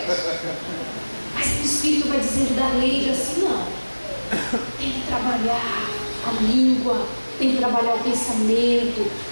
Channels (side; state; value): both; inverted; correlation -1.00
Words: Mas o Espírito vai dizendo da lei assim, não. Tem que trabalhar a língua, tem que trabalhar o pensamento,